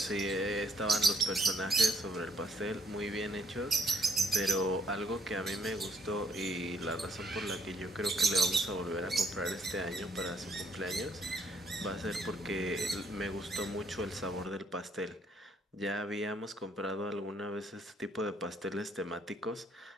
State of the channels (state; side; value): normal; both; correlation 0.68